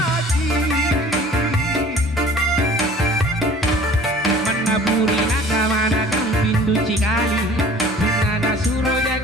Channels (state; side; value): normal; both; correlation 0.48